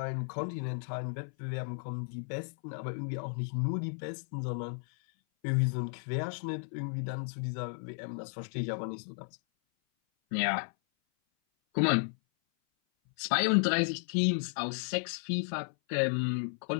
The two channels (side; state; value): right; silent; 55 dB below the other